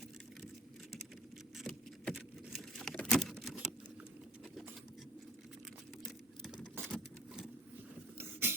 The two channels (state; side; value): normal; both; correlation 0.42